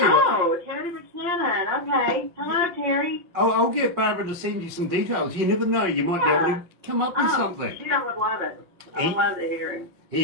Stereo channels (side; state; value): left; late; 5.5 ms